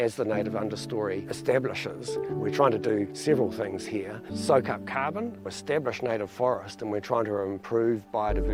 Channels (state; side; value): identical; both; correlation 1.00